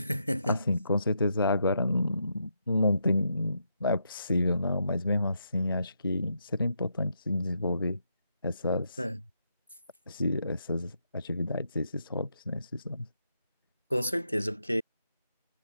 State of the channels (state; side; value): inverted; both; correlation -0.80